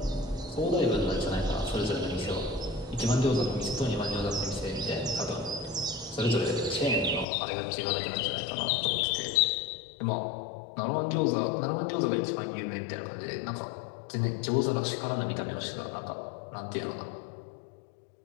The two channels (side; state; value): right; drops out; at 7.2 s